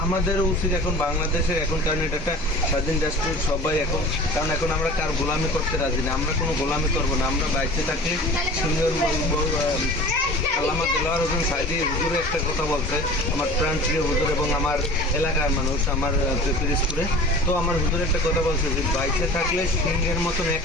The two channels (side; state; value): both; normal; correlation 0.40